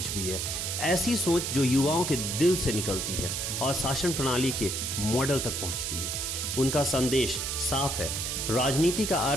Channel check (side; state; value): right; noise; hiss, 2 dB below the sound